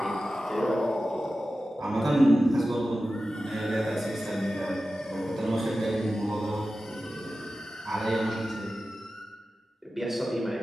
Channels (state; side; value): normal; both; correlation 0.94